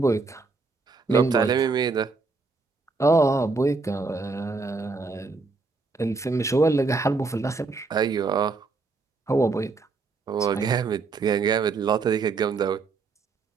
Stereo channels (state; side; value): quieter; left; 4.1 dB